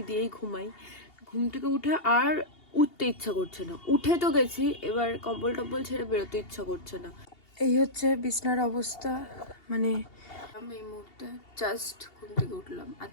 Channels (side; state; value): right; late; 2.8 ms